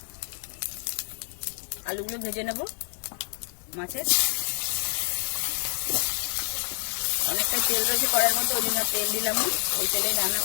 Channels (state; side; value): silent; right; 60 dB below the other